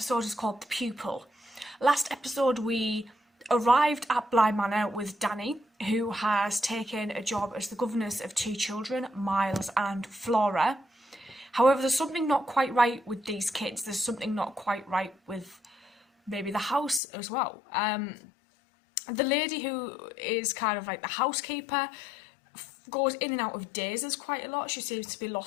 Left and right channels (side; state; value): right; drops out; at 17.0 s